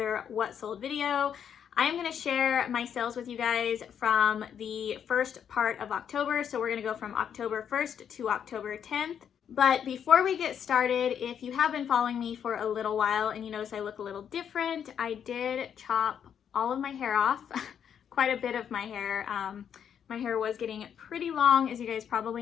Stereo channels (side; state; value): right; quieter; 8.4 dB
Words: What Sold video. I am going to share my sales with you guys from the first part of October, so we're going to go from October 1st to October 10th. But before we get started, if you have been following me for a little while and you notice I look a little different, I did chop all of my hair off, quite a bit of my hair. My hair was getting pretty long, as you guys probably